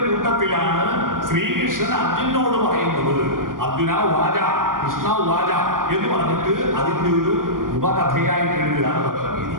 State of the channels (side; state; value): left; late; 0.91 ms